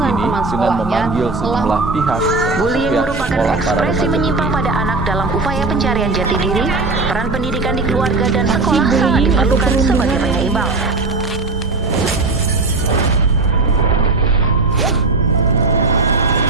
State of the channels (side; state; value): left; quieter; 3.5 dB